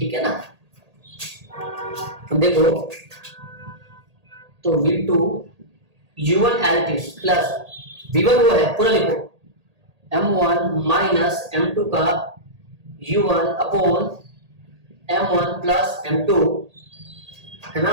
है ना। देखो तो v2 u1 as it is plus v1 वो है, पूरा लिखो, m1 माइनस m2 का u1 upon m1 plus m2, है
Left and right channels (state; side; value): late; left; 1.8 ms